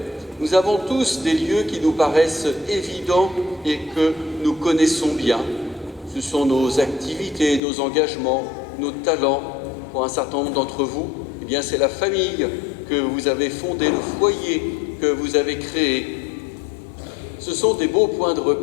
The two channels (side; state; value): right; drops out; at 7.6 s